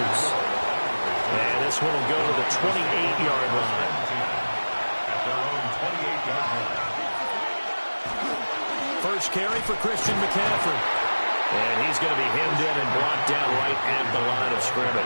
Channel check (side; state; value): both; inverted; correlation -1.00